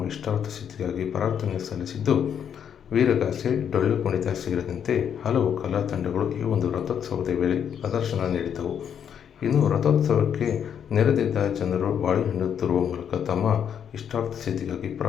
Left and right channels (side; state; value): right; quieter; 8.4 dB